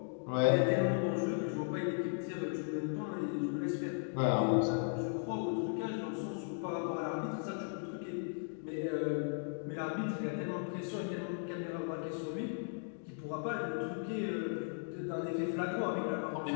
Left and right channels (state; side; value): silent; right; digital silence